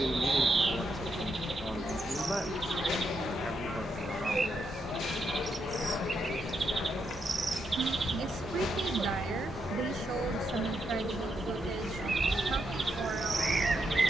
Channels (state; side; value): normal; both; correlation 0.81